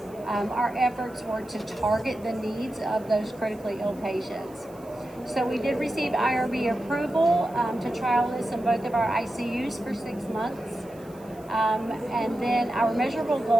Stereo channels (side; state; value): right; noise; hiss, 26 dB below the sound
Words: our efforts were to target the needs of those critically ill patients. So we did receive IRB approval to trial this in both of our ICUs for 6 months. And then our measurable